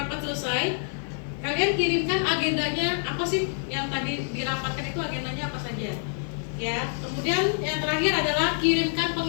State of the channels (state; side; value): silent; right; digital silence